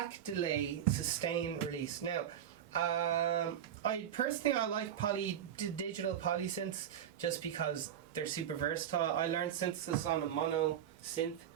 delay, sustain, release. Now, I like digital polysynths just because they're super versatile. I learned synthesis on a mono synth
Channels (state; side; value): quieter; left; 9.8 dB